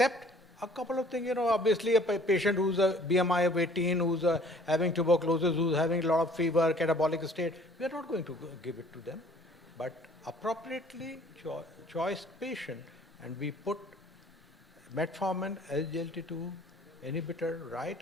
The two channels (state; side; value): normal; both; correlation 0.55